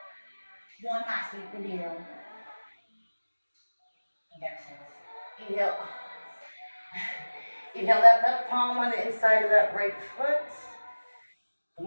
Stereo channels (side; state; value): both; inverted; correlation -1.00